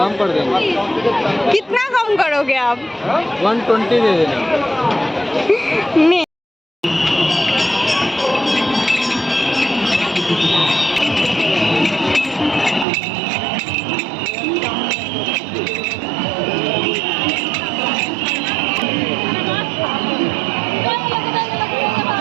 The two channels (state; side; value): drops out; left; at 12.9 s